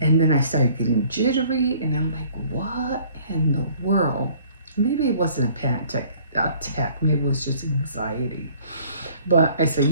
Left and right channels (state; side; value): inverted; both; correlation -0.55